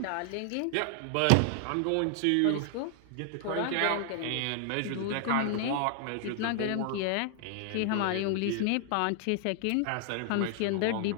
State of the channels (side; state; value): both; different; correlation 0.00